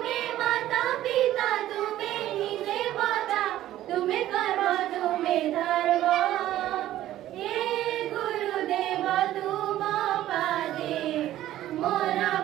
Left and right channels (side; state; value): left; quieter; 13.6 dB